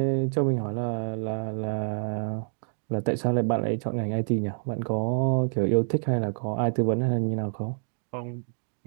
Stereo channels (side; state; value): left; silent; digital silence